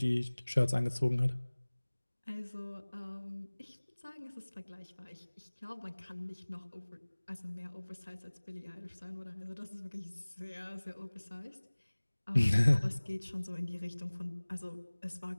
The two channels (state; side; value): inverted; both; correlation -1.00